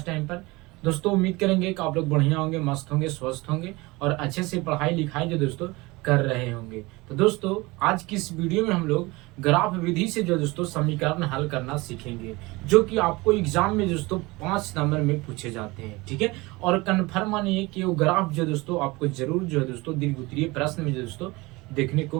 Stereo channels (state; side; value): quieter; left; 22.8 dB